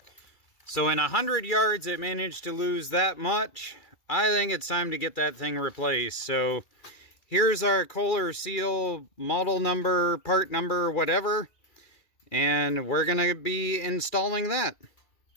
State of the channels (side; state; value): right; late; 2.4 ms